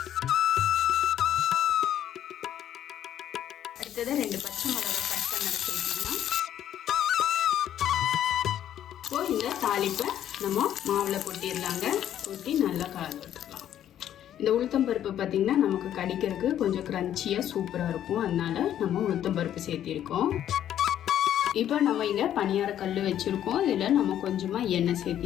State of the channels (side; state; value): right; quieter; 10.9 dB